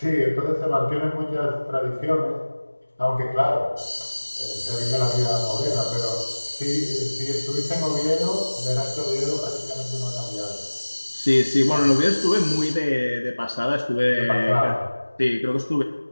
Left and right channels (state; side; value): inverted; both; correlation -1.00